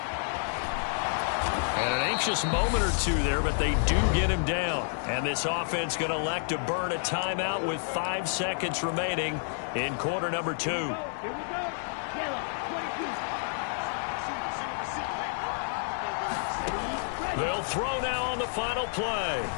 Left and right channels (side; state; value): right; silent; digital silence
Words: And an anxious moment or two there, but they do get him down. And this offense going to elect to burn a timeout with 5 seconds remaining in quarter number 2. They'll throw now on the final play.